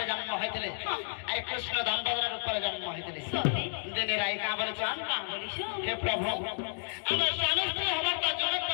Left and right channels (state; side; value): silent; right; digital silence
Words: জন্ম হয়েছিল আর কৃষ্ণ দামোদরের উপরে জন্ম হয়েছিল। দিনের আই কা বলেছেন হে প্রভু আমার স্বামী স্ত্রী হবার তো জনক